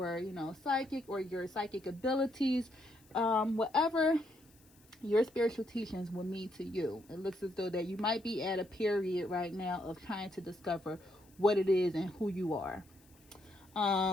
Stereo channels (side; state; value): left; noise; hiss, 29 dB below the sound